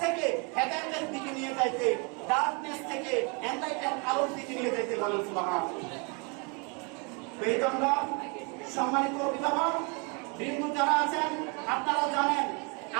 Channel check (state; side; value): quieter; left; 33.1 dB